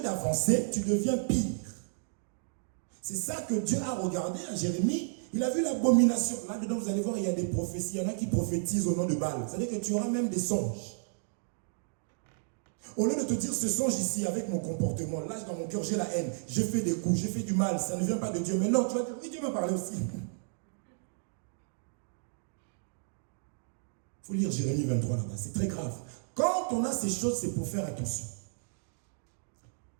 d'avancer, tu deviens pire. C'est ça que Dieu a regardé à Jérémie. Il a vu l'abomination. Là-dedans, vous allez voir, il y a des prophéties. Il y en a qui prophétisent au nom de Baal. C'est-à-dire que tu auras même des songes. Au lieu de te dire, ce songe ici, avec mon comportement, là, dans mon cœur, j'ai la haine. J'ai fait des coups, j'ai fait du mal. Ça ne vient pas de Dieu. Mais non, tu vas dire, oui, Dieu m'a parlé aussi. Il faut lire Jérémie 23 là-bas. C'est très grave. Quand on a ces choses, c'est pour faire attention.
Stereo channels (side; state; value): left; silent; digital silence